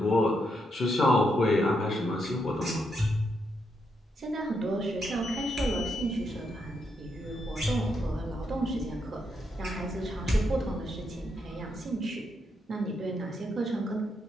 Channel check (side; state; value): both; normal; correlation 0.80